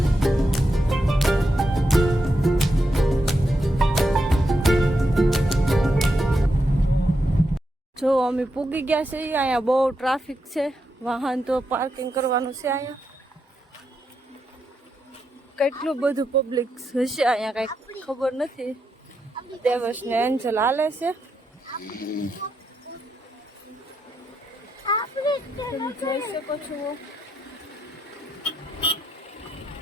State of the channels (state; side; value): normal; both; correlation 0.84